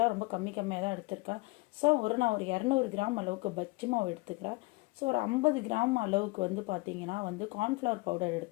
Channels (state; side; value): quieter; right; 24.5 dB